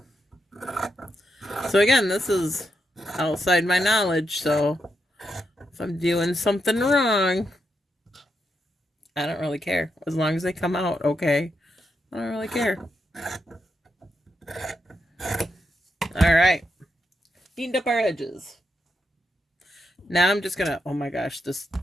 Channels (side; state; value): both; normal; correlation 0.83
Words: so again, this is outside my knowledge, so if I'm doing something wrong, I don't really care. As long as they come out okay, I don't really care. All right, cleaned up our edges. Now I'm just gonna, oh my gosh, this